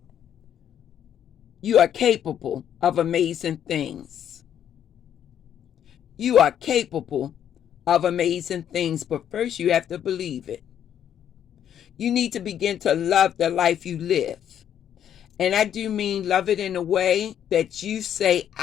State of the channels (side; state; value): right; quieter; 9.7 dB